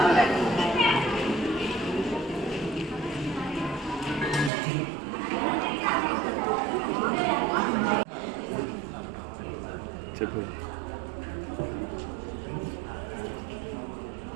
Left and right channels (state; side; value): drops out; left; at 4.5 s